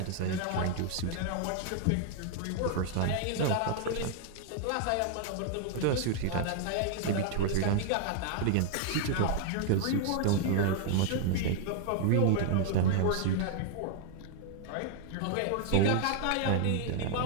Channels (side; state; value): both; different; correlation 0.00